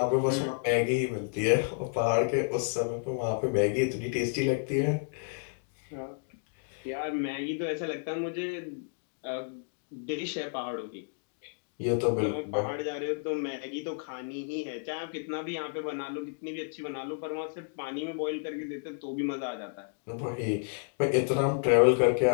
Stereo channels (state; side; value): silent; right; digital silence